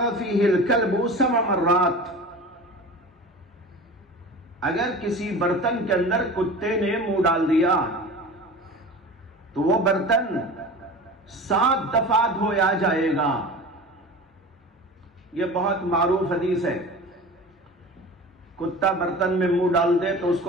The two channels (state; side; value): normal; both; correlation 0.35